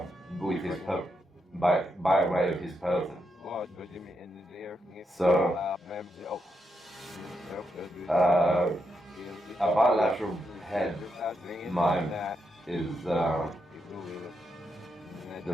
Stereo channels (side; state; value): both; normal; correlation 0.82